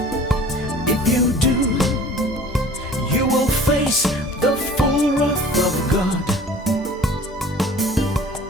If you do, you will face the full wrath of God.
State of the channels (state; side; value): normal; both; correlation 0.46